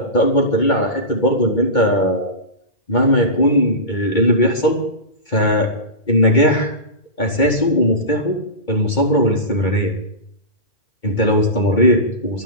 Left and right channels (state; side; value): late; right; 2.2 ms